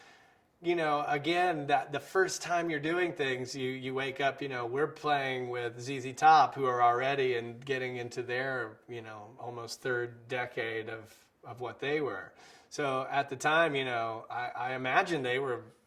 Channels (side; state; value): both; identical; correlation 1.00